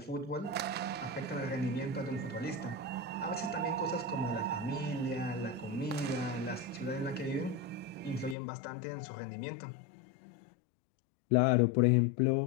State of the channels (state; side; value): drops out; right; at 8.3 s